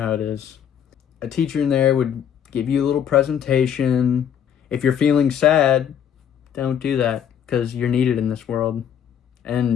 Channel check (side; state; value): right; quieter; 8.8 dB